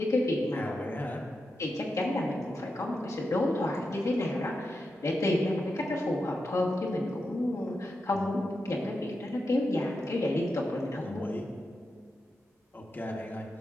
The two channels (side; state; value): both; normal; correlation 0.88